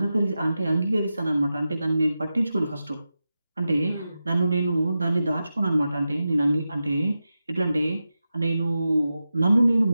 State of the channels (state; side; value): inverted; both; correlation -0.92